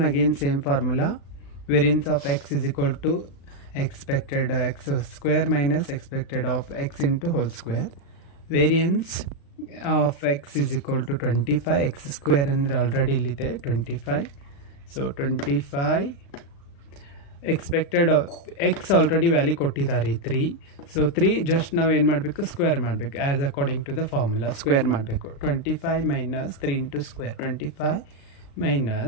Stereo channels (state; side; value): late; right; 36 ms